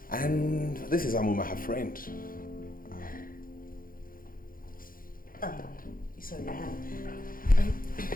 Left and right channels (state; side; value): late; right; 0.41 ms